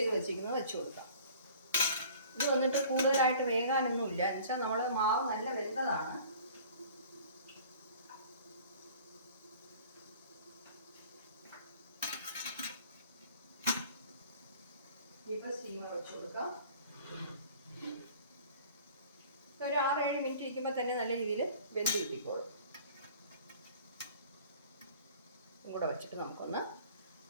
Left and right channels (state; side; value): inverted; both; correlation -0.48